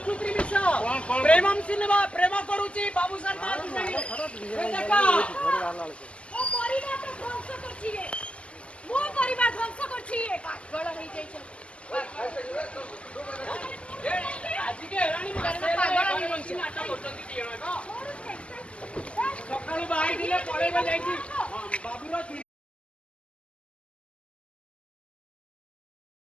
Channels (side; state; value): right; late; 0.056 ms